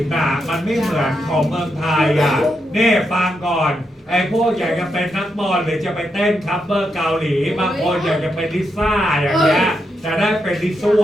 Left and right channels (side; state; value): both; normal; correlation 0.82